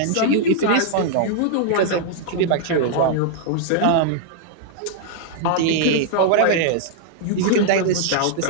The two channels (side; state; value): both; different; correlation -0.01